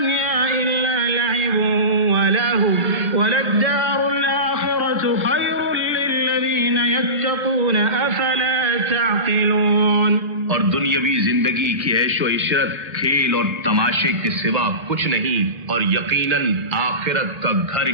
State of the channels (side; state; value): left; late; 1.5 ms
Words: إلا لعب ولهو وللدار الآخرة خير للذين يتقون أفلا تعقلون۔ اور دنیاوی زندگی کی عیش و عشرت کھیل اور تماشے کے سوا کچھ نہیں، اور یقیناً آخرت کا گھر